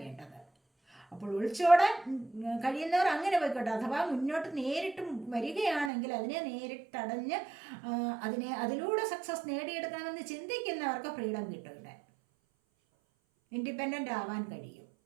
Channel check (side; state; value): left; drops out; at 5.9 s